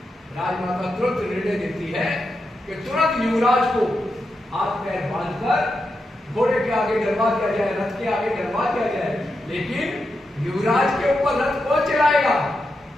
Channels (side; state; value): both; normal; correlation 0.87